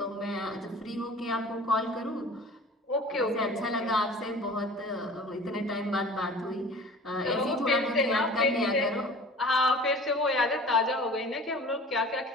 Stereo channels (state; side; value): normal; both; correlation 0.42